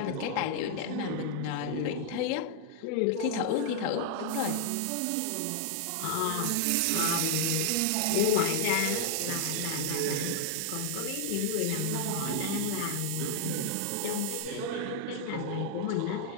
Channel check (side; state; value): both; different; correlation 0.00